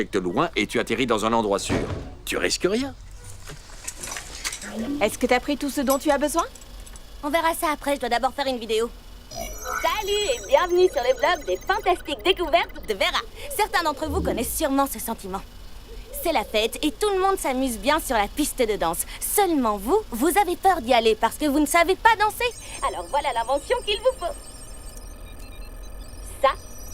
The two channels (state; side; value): identical; both; correlation 1.00